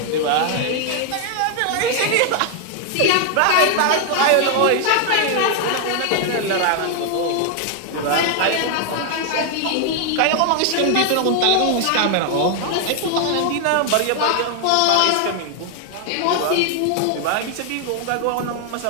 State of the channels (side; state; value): both; different; correlation 0.00